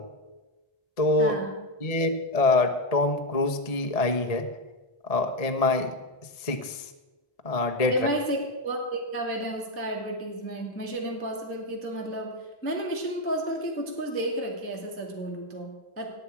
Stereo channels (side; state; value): right; late; 1.7 ms